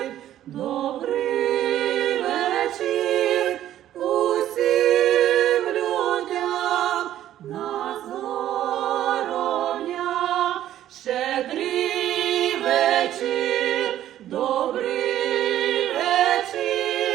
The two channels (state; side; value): quieter; left; 12.3 dB